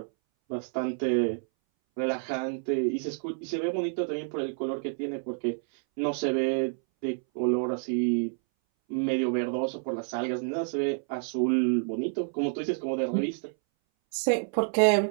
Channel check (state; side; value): silent; left; 59 dB below the other